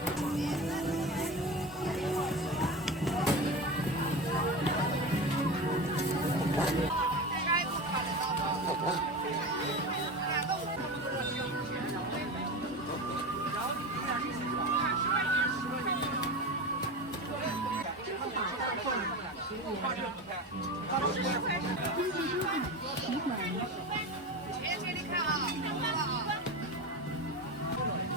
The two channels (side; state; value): both; normal; correlation 0.26